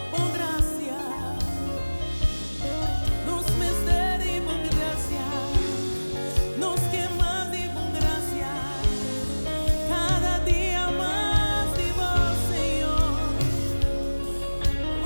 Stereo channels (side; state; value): both; inverted; correlation -1.00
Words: Oh, gracia, nos misteri, por gracia, nos quemas de por gracia, cada día más de vos, Señor.